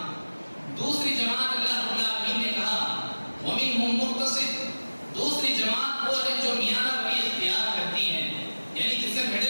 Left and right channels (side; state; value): both; inverted; correlation -1.00